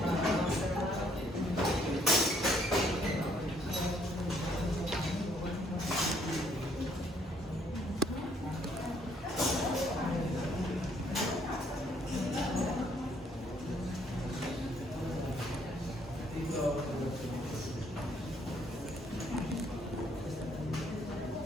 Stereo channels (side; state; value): both; normal; correlation 0.67